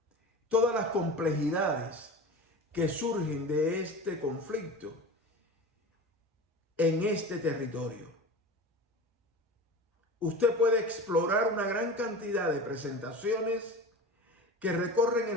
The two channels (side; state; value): both; normal; correlation 0.33